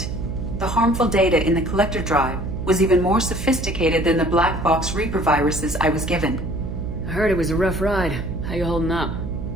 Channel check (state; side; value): noise; right; hum, 6 dB below the sound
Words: The harmful data in the Collector drive was even more sophisticated than the black box Reaper viruses I was given. I heard it was a rough ride. How you holding up?